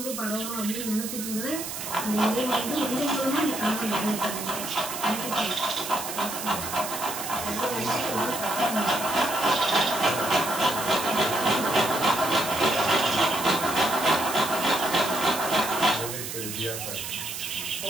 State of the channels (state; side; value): noise; right; hiss, 7 dB below the sound